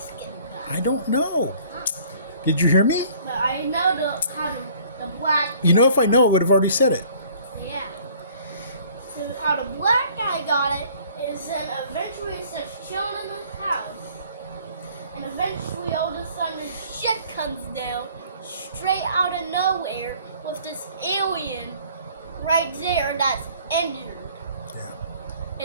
guy. I don't know. Did you hear me? But I know how the black... If I know, I would have already said it. Yeah. So how the black guy got it is then eventually it's just chilling in the house. And eventually all of a sudden this shit comes down straight out of nowhere with this alien right there that's injured. Yeah.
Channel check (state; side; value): inverted; both; correlation -0.55